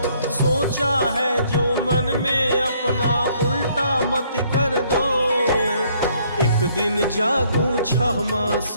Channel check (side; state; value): both; inverted; correlation -0.65